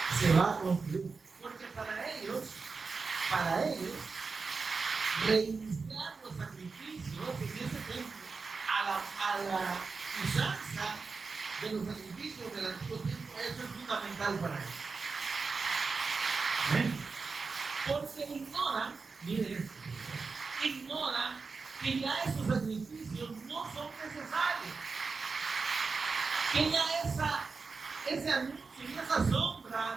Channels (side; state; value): left; quieter; 4.6 dB